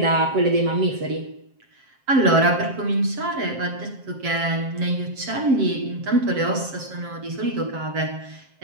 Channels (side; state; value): left; late; 7.6 ms